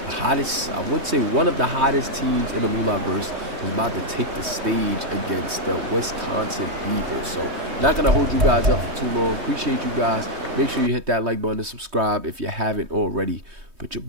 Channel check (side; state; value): left; late; 3.2 ms